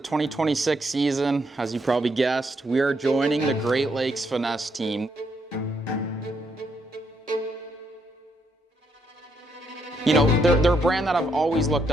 season. As you probably guessed, we are joining the Great Lakes Finesse team. You know, they're a brand that I've always looked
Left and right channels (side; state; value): both; normal; correlation 0.76